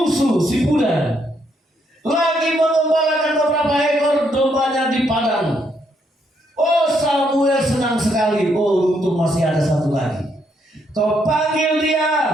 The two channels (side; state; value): both; normal; correlation 0.75